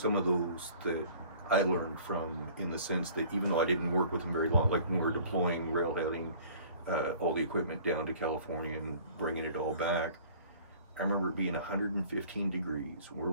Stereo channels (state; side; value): inverted; both; correlation -0.50